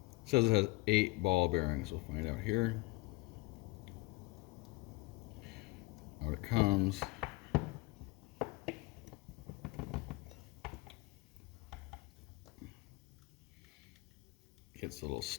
says it has 8 ball bearings. We'll find out here. Out it comes. Gets a little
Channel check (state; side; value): quieter; right; 22.0 dB